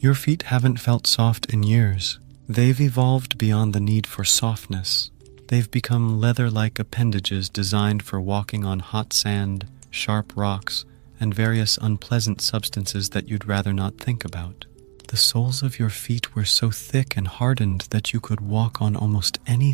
feet haven't felt soft in years. They've evolved beyond the need for softness. They've become leather-like appendages designed for walking on hot sand, sharp rocks, and various unpleasant substances that you'd rather not think about. The soles of your feet were so thick and hardened that you could walk on almost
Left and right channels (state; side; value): quieter; left; 36.8 dB